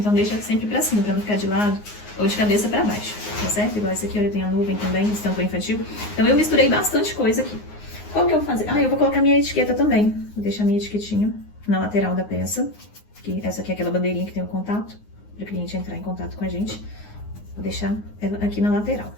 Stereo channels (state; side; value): late; right; 9.6 ms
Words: deixa sempre pra cima, pra não ficar de lado ou de cabeça pra baixo, tá certo? Igual esse aqui, olha, tem a nuvem também, estampa infantil. Então eu misturei bastante coisa aqui. Qual que eu vou fazer? Ah, eu vou colocar minha etiqueta também. Vou deixar minha etiquetinha na lateral da peça. Essa aqui é aquela bandeirinha que tem o contato, para o cliente entrar em contato com a gente. Vou deixar ela aqui na lateral.